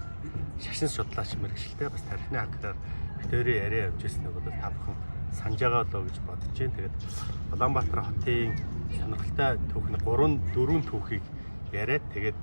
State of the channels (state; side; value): inverted; both; correlation -1.00